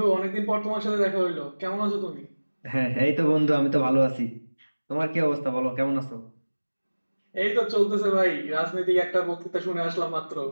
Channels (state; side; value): inverted; both; correlation -1.00